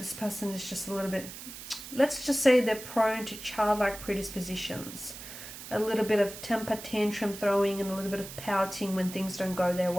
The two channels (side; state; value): right; noise; hiss, 12 dB below the sound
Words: person is just a little bit, let's just say they're prone to childlike predispositions. A little bit of temper tantrum throwing and a little bit of pouting when things don't go their